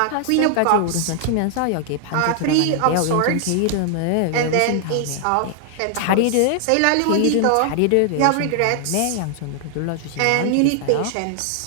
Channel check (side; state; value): both; different; correlation 0.00